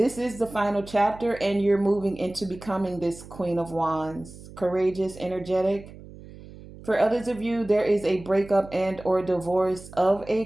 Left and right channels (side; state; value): right; noise; hum, 17 dB below the sound